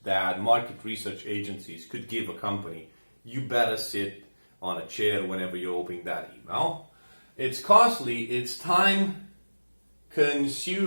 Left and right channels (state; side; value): inverted; both; correlation -1.00